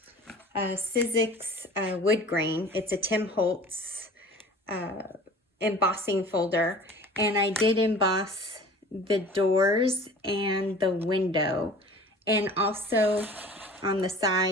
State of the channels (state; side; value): normal; both; correlation 0.43